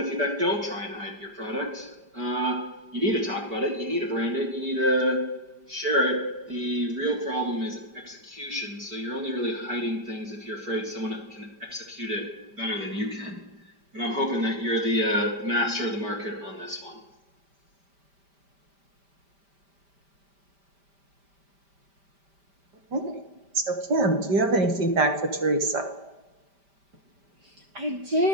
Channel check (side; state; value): left; late; 5.1 ms